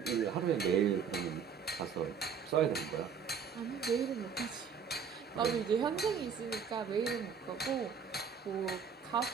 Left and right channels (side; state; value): left; quieter; 6.5 dB